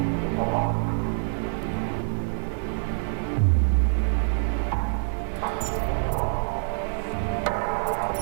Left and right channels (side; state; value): left; silent; digital silence